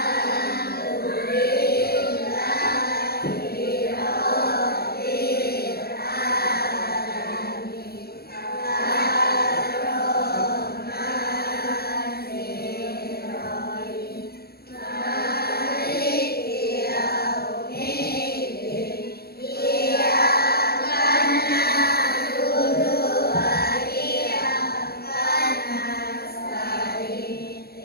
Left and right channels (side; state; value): right; late; 0.46 ms